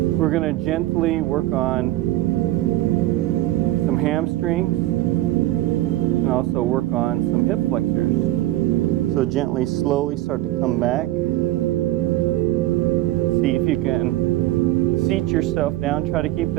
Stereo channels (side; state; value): left; quieter; 16.1 dB